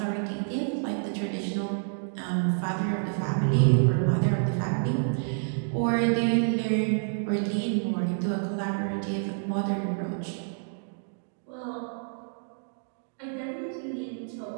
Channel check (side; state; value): left; silent; digital silence